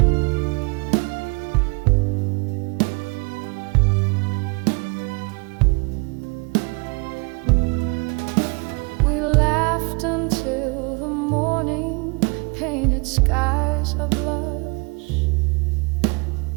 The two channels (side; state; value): left; quieter; 30.1 dB